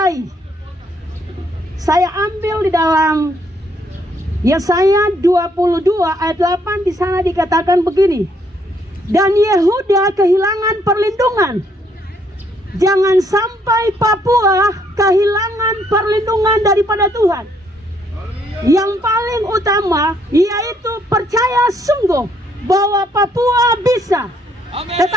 Saya ambil di dalam Yesaya 22 ayat 8, di sana dikatakan begini, dan Yehuda kehilangan perlindungan. Jangan sampai Papua kehilangan perlindungan daripada Tuhan. Yang paling utama yaitu percaya sungguh bahwa Papua bisa,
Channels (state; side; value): normal; both; correlation 0.69